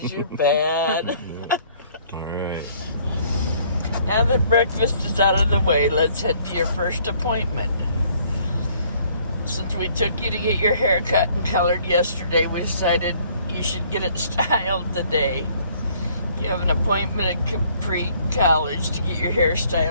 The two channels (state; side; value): inverted; both; correlation -0.61